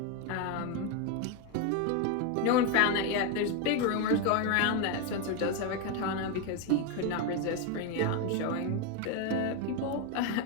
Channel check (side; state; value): both; different; correlation 0.02